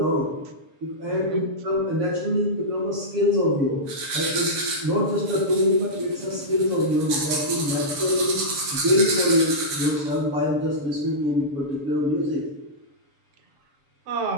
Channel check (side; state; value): left; late; 7.0 ms